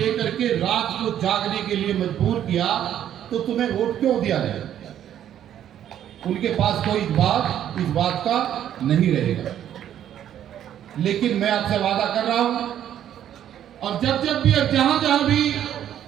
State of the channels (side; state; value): left; quieter; 10.6 dB